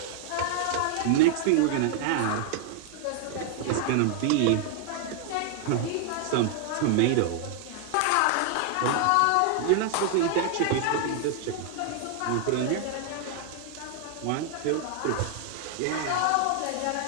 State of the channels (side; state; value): both; different; correlation 0.00